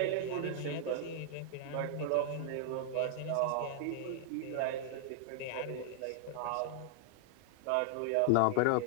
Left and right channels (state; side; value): different; both; correlation 0.00